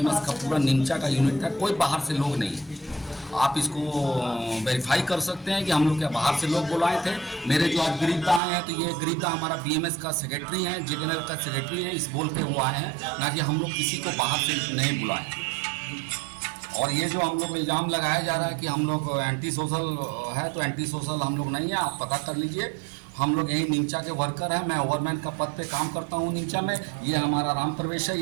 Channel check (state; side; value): drops out; left; at 8.4 s